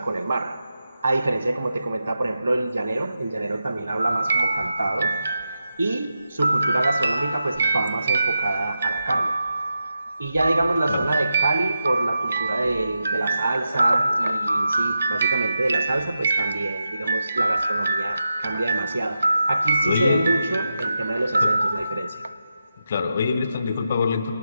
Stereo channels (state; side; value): inverted; both; correlation -0.88